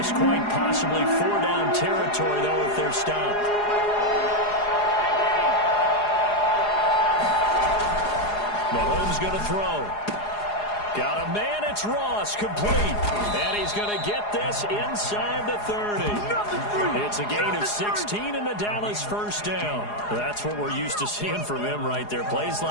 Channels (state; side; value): late; right; 4.8 ms